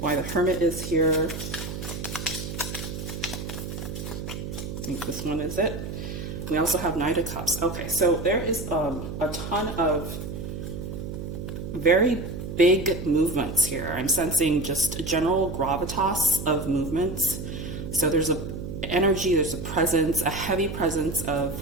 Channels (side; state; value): right; noise; hum, 7 dB below the sound